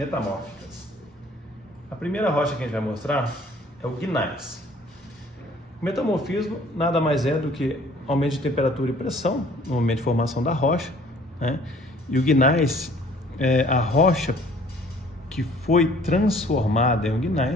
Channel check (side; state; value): both; normal; correlation 0.55